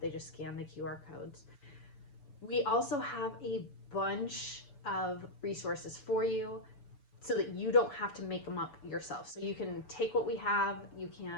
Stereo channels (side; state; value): right; late; 7.0 ms